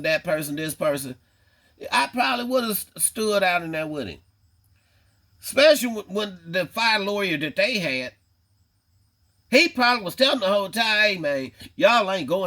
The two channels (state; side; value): identical; both; correlation 1.00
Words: that person, this person. I probably would have stood out in there with him. Especially when the fire lawyer that they had, he probably was telling the whole time, hey man, y'all ain't